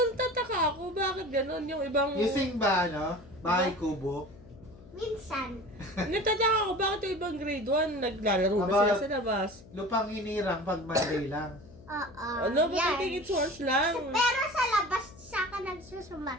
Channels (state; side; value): noise; left; hum, 21 dB below the sound